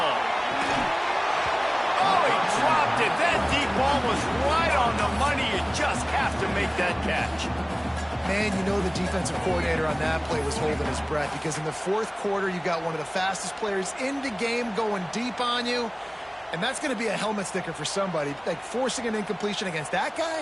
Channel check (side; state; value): both; identical; correlation 1.00